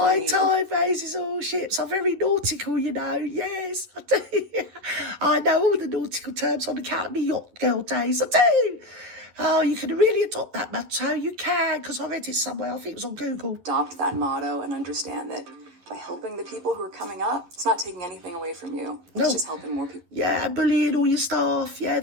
tide raises all ships. I'm very nautical, you know. Yes, I do. I know all the nautical terms on account of me yacht girl days. I do. Oh, you can really adopt that motto. You can, because I read it somewhere. I think it was on Google. Adopt that motto and understand that by helping the people who are coming up, it's not taking anything away from you. It's just helping more people. Yeah, bullying all your staff. Yeah,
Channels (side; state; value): left; late; 11 ms